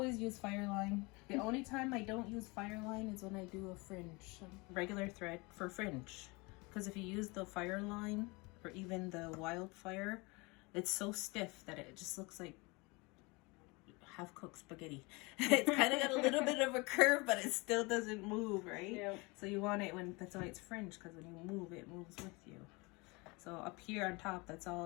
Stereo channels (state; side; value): quieter; right; 26.4 dB